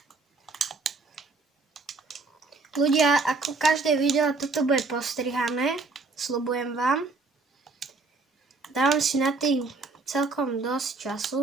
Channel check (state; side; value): quieter; left; 3.8 dB